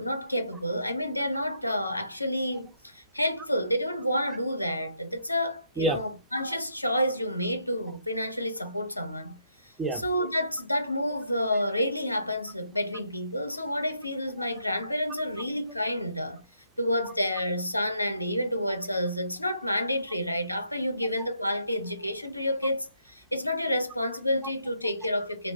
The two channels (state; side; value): inverted; both; correlation -0.75